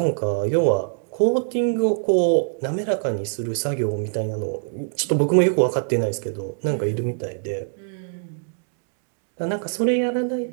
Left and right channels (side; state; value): left; silent; digital silence